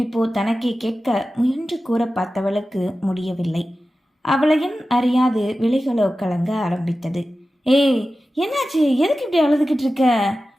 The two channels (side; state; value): both; normal; correlation 0.94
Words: தனக்கே கேட்க முயன்று கூற பார்த்தவளுக்கு முடியவில்லை. அவளையும் அறியாது விழிகளோ கலங்க ஆரம்பித்தது. ஏய், என்னாச்சு? எதுக்கு இப்படி அழுதுகிட்டு இருக்க?